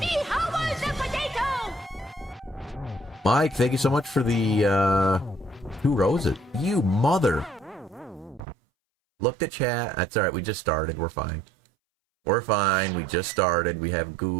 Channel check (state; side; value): drops out; left; at 8.4 s